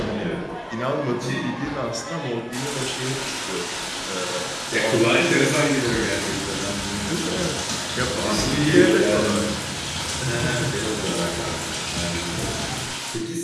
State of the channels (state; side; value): identical; both; correlation 1.00